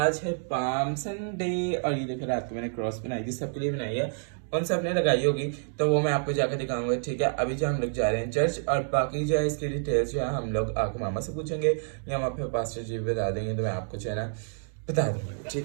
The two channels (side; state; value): left; silent; digital silence